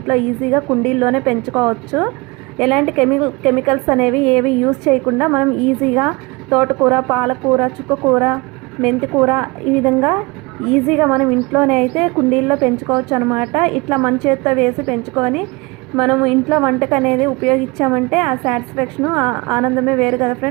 ఈజీగా కుండీల్లోనే పెంచుకోవచ్చు. ఎలాంటి కెమికల్స్ అనేవి ఏవి యూజ్ చేయకుండా మనం ఈజీగా తోటకూర, పాలకూర, చుక్కకూర, మెంతికూర ఈ విధంగా ఈజీగా మనం ఇంట్లోనే అయితే కుండీల్లో పెంచుకోవచ్చు అనమాట. ఇట్లా మన చేత్తో వేసి పెంచుకొని మనము ఇంట్లో వంటకు అనేది ఉపయోగించామంటే ఆ సాటిస్ఫాక్షను ఆనందమే వేరు కదా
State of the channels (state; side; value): quieter; left; 25.6 dB